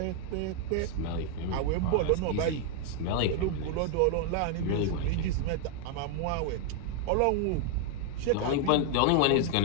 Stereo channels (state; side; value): different; both; correlation 0.00